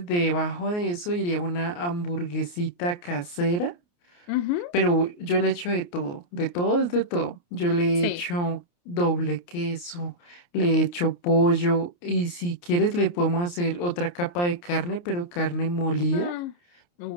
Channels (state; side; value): late; right; 29 ms